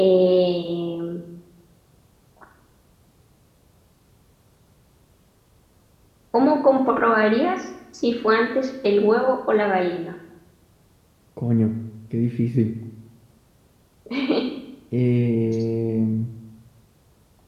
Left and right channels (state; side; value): identical; both; correlation 1.00